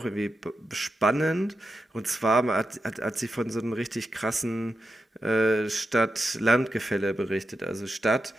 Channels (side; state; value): both; normal; correlation 0.88